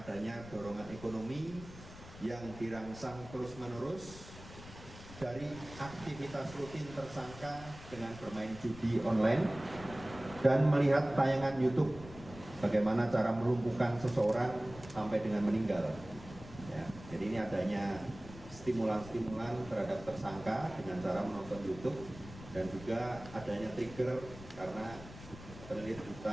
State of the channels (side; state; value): left; noise; rumble, 16 dB below the sound